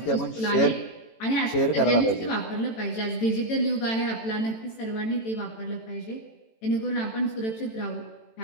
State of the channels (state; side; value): late; right; 18 ms